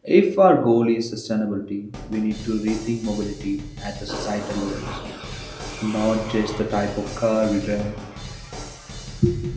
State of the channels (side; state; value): both; identical; correlation 1.00